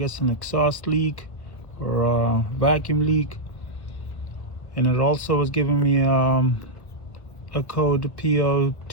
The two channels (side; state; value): right; late; 1.2 ms